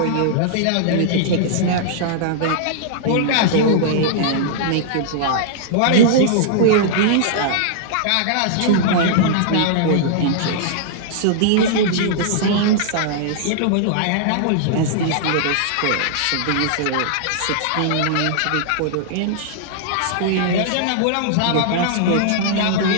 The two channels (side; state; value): both; different; correlation -0.01